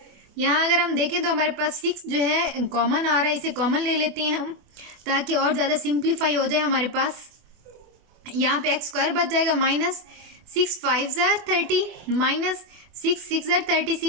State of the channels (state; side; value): late; left; 24 ms